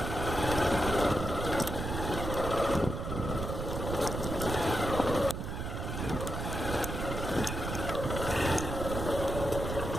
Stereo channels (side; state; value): right; noise; rumble, 4 dB below the sound